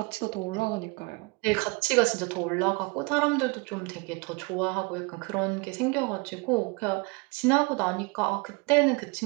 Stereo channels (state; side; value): quieter; left; 28.6 dB